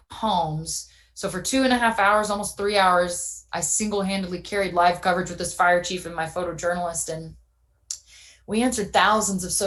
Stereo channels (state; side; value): identical; both; correlation 1.00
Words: homes. So for 2.5 hours, almost 3 hours, I single-handedly carried live coverage with this fire chief and my photojournalist. And we answered thousands of